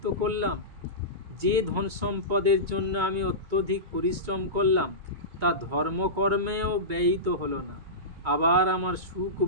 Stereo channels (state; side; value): late; left; 2.2 ms